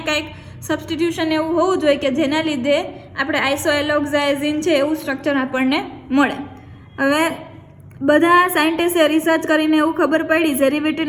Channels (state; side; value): identical; both; correlation 1.00